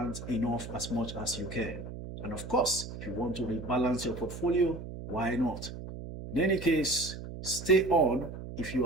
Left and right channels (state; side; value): noise; right; hum, 10 dB below the sound